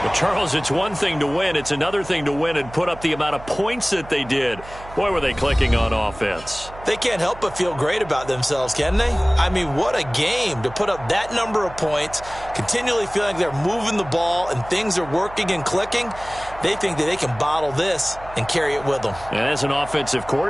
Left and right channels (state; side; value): noise; right; hum, 17 dB below the sound